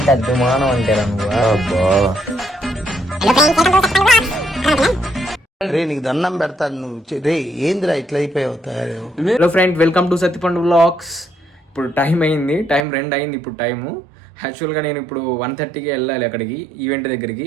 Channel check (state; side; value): drops out; left; at 12.8 s